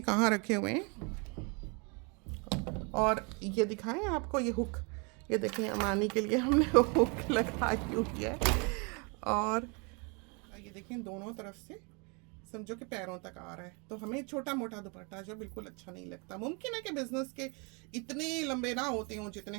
कहाँ रखे हुए हैं। और ये दिखाएं आपको ये हुक, ये देखें अमानी के लिए हमने हुक लगाई हुई है। और ये देखें दोनों तरफ से समझो कि पैरों तक आ रहा है। तो हमें छोटा मोटा दुपट्टा जो बिल्कुल अच्छा नहीं लगता। मुमकिन है कि बिजनेस के इतने लंबे ना होते हों जितने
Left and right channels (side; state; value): left; quieter; 32.9 dB